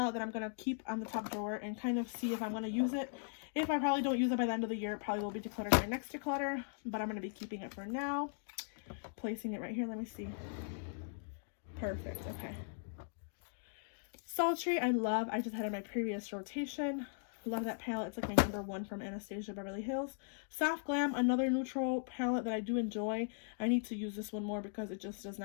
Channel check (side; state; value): right; silent; digital silence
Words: that I'm going to keep on the top drawer and kind of see if I'm going to use it. If I probably don't use it by the end of the year, it probably will be decluttered my next declutter, but I'm going to be keeping it for now. Placing it right here. Let me see. Perfect. Okay. Sultry, I love. I just had it in my previous rotation. Love that palette. It's like my number one from Anastasia Beverly Hills. Soft Glam, another neutral palette that I do enjoy. I need to use this one more because it just does